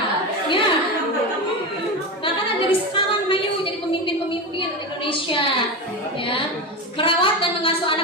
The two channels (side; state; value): both; normal; correlation 0.20